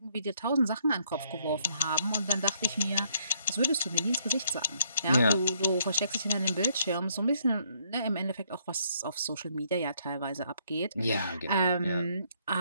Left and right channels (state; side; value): inverted; both; correlation -0.70